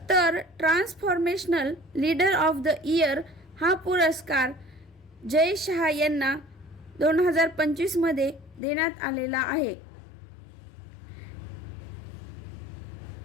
तर transformational leader of the year हा पुरस्कार जय शहा यांना 2025मध्ये देण्यात आलेला आहे.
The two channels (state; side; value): drops out; right; at 8.6 s